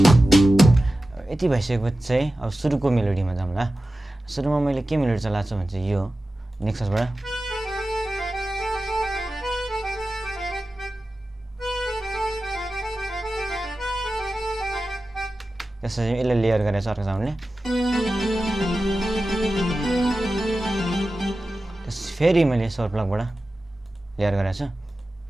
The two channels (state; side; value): normal; both; correlation 0.94